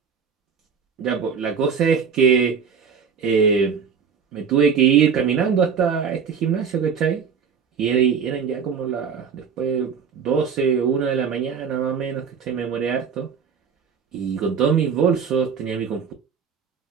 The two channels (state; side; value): quieter; left; 6.5 dB